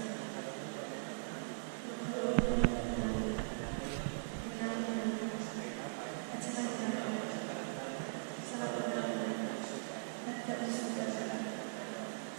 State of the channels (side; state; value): left; silent; digital silence